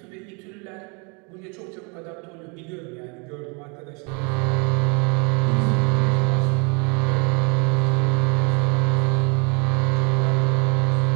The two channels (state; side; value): quieter; left; 32.7 dB